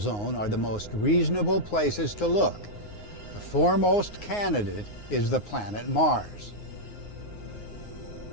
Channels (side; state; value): right; late; 9.6 ms